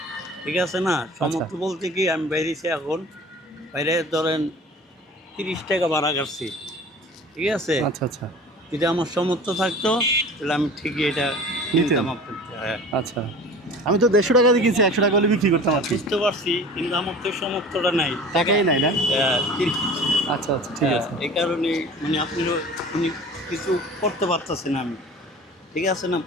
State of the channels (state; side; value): normal; both; correlation 0.41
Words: ঠিক আছে না? সমর্থ বলতে কি আমি বাইরেছি এখন, বাইরে ধরেন 30 টাকা ভাড়া কাটছি, ঠিক আছে? আচ্ছা আচ্ছা যদি আমার সমর্থ থাকতো তাহলে আমি ঠিকই এটা কিনতাম আপনার। হ্যাঁ আচ্ছা, আমি তো 150 টাকা দিয়ে কিনছি, 100 টাকা হলে বিক্রি করতাম আর কি। বুঝতে পারছি, কিন্তু আমার তো সমর্থটা নাই, টাকাই নাই না? ঠিক আচ্ছা আচ্ছা ঠিক আছে। এই কারণে মানে আপনিও উনি কিছু করতে পারতেছেন আমি, ঠিক আছে না?